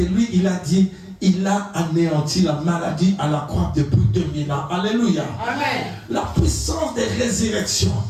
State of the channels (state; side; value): identical; both; correlation 1.00